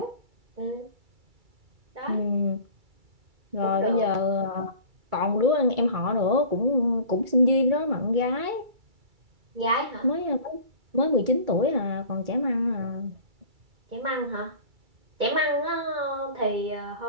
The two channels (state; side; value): late; left; 2.3 ms